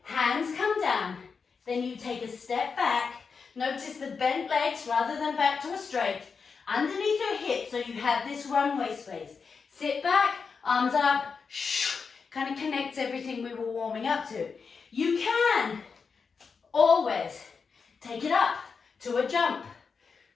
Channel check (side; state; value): right; quieter; 5.4 dB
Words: Hands come down. Then you take a step back. Notice the bent legs rather than back to a straight. Underneath your hips, so you have this runway space. Sit back, arms up, kind of connects everything we were warming up to. You can always take it up to a jump,